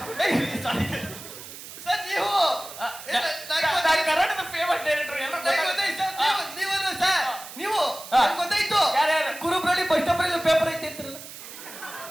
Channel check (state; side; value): noise; right; hiss, 14 dB below the sound